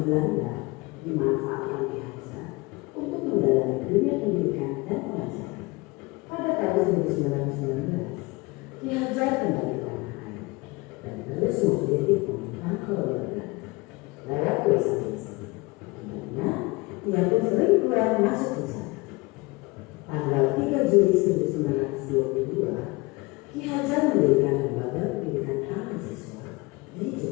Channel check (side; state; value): right; quieter; 24.4 dB